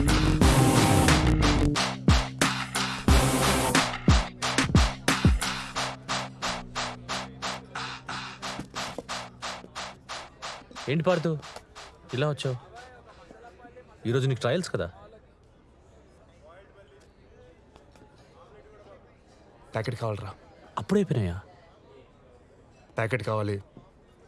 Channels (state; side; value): identical; both; correlation 1.00